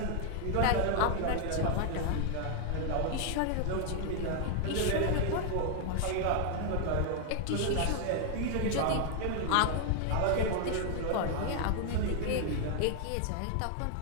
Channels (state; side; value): different; both; correlation 0.00